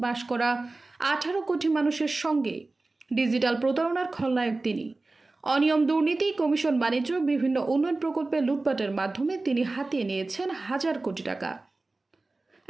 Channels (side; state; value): left; quieter; 3.3 dB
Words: বাস করা ১৮ কোটি মানুষের সঙ্গে ডিজিটাল প্রতারণার খলনায়ক তিনি। অনিয়ম, দুর্নীতি, কমিশন, বাণিজ্য, বিভিন্ন উন্নয়ন প্রকল্পে লুটপাটের মাধ্যমে তিনি হাতিয়ে নিয়েছেন হাজার কোটি টাকা।